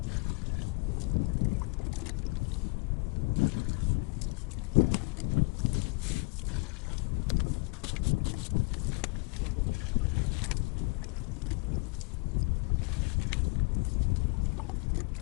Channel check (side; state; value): right; quieter; 27.9 dB